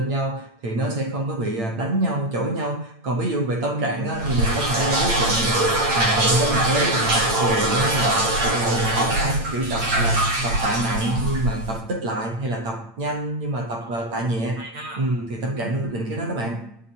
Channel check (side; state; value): left; late; 8.8 ms